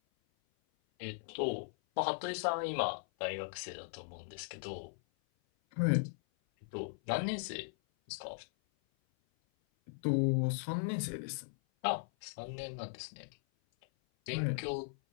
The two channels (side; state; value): right; silent; 52 dB below the other